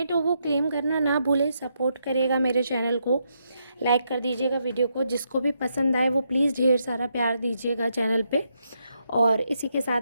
हो वो क्लेम करना ना भूलें, सपोर्ट करिएगा मेरे चैनल को, लाइक कर दीजिएगा वीडियो को। जिसको भी पसंद आए वो प्लीज़ ढेर सारा प्यार दीजिएगा चैनल पे। और इसी के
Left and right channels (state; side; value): inverted; both; correlation -0.79